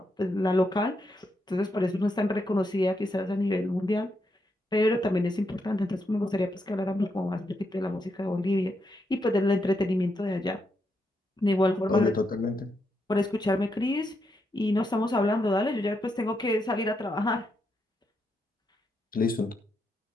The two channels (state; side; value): normal; both; correlation 0.81